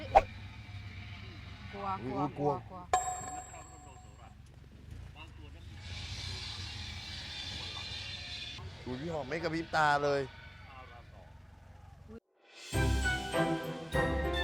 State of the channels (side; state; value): both; identical; correlation 1.00